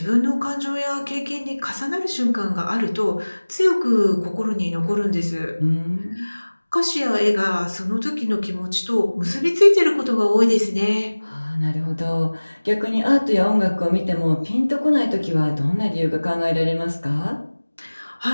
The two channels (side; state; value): both; inverted; correlation -1.00